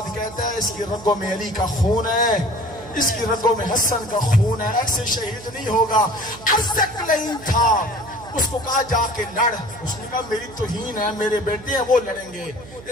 کہتا ہے اس کی رگوں میں علی کا خون ہے، اس کی رگوں میں حسن کا خون ہے، ایسے شہید نہیں ہوگا۔ ارزق لائن تھا، اس کو کہا جا کے لڑ، اس نے کہا میری توہین ہے، میرے بیٹے ہیں وہ لڑیں گے۔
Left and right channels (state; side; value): noise; right; hum, 18 dB below the sound